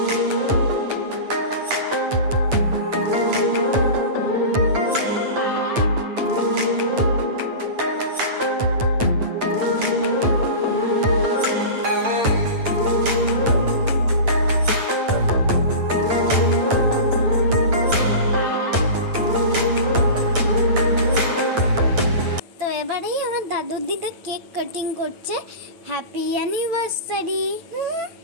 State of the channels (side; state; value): left; late; 8.9 ms